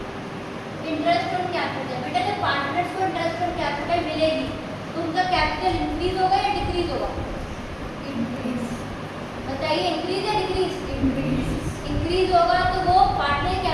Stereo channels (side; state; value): both; identical; correlation 1.00